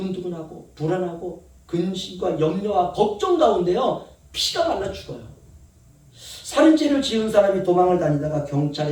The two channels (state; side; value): identical; both; correlation 1.00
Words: 불안하고 근심과 염려와 걱정 가운데요 피가 말라 죽어요. 살인죄를 지은 사람이 도망을 다니다가